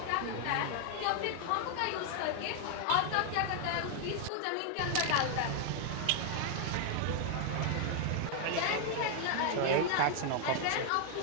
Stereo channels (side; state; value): both; different; correlation 0.00